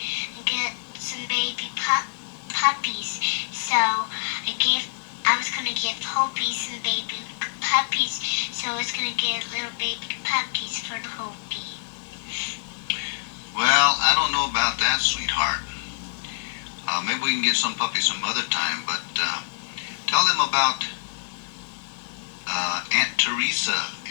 give Hopies and baby puppies, so it's gonna get little baby puppies for the Hopi. Well, I don't know about that, sweetheart. Maybe we can get some puppies some other time, but tell them about Aunt Teresa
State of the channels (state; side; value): silent; right; 61 dB below the other